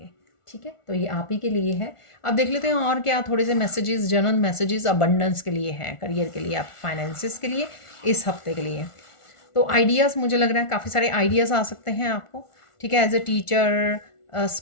ठीक है, तो ये आप ही के लिए है। अब देख लेते हैं और क्या थोड़े से मैसेजेस, जनरल मैसेजेस अबंडेंस के लिए हैं, करियर के लिए, आप फाइनेंसिस के लिए, इस हफ्ते के लिए। तो आइडियाज़, मुझे लग रहा है काफ़ी सारे आइडियाज़ आ सकते हैं आपको। ठीक है, as a teacher,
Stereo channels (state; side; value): late; right; 1.4 ms